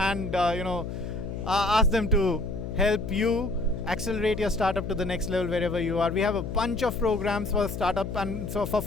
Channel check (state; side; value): noise; left; hum, 6 dB below the sound